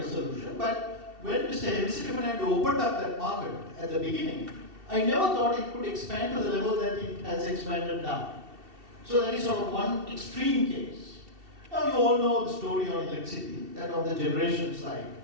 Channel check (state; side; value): late; left; 2.7 ms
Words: of solution, but when Mr. Hemsittimanand opened up that market at the beginning, I never thought it could expand to the level that it has expanded now. So that is sort of one extreme case. Now you all know the story on electricity, that on the generation side,